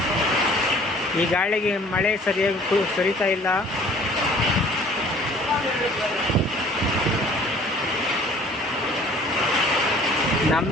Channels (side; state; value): both; normal; correlation 0.53